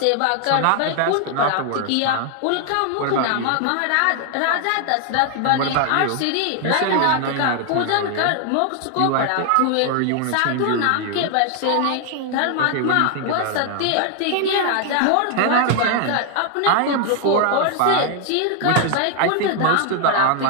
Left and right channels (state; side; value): different; both; correlation 0.00